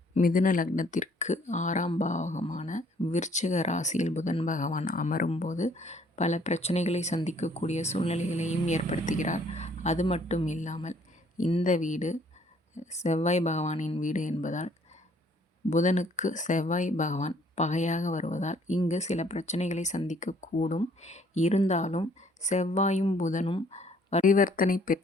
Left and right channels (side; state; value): both; normal; correlation 0.62